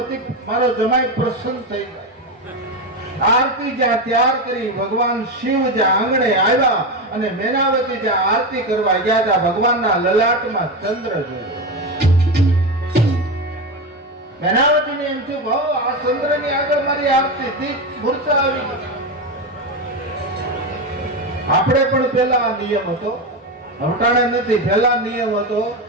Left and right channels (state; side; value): normal; both; correlation 0.16